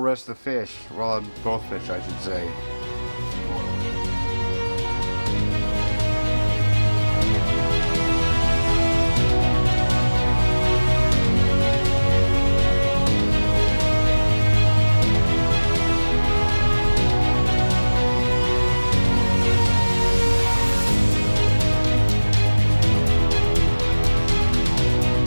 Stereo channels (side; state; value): both; inverted; correlation -1.00